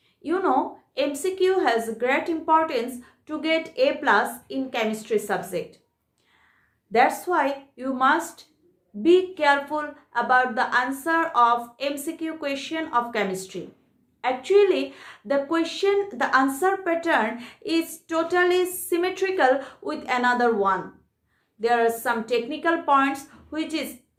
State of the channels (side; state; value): both; identical; correlation 1.00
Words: You know, MCQ has great importance to get A plus in chemistry subject. That's why you must be careful about the answer of MCQ question of chemistry. Actually, the answer pattern is totally symmetrical with another one. There are some technical points